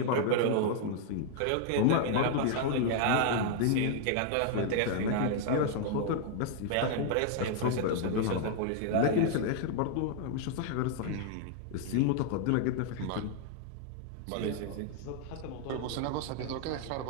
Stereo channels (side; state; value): both; different; correlation 0.00